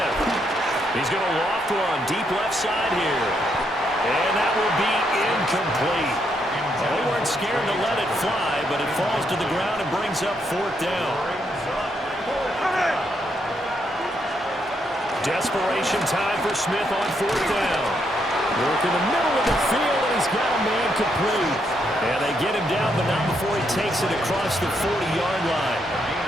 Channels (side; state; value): both; normal; correlation 0.77